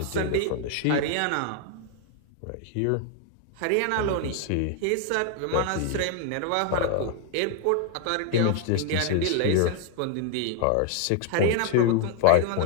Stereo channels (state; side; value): different; both; correlation 0.00